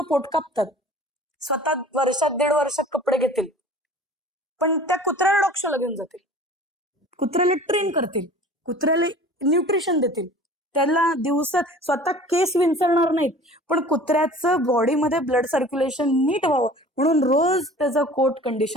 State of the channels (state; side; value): normal; both; correlation 0.44